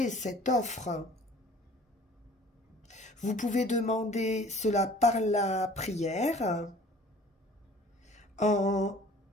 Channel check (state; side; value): normal; both; correlation 0.50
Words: cette offre. Vous pouvez demander cela par la prière, en